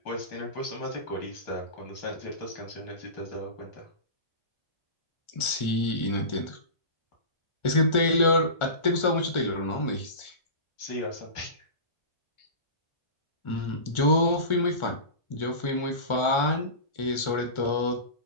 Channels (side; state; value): right; late; 1.4 ms